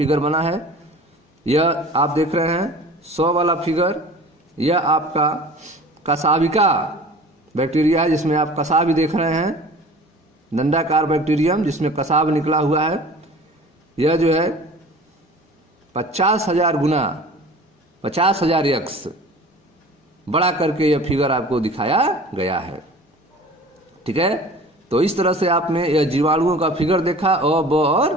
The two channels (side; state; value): both; normal; correlation 0.42